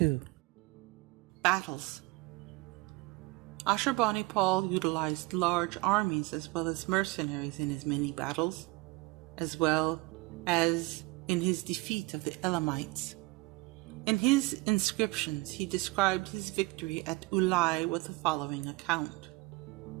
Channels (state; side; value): quieter; left; 23.0 dB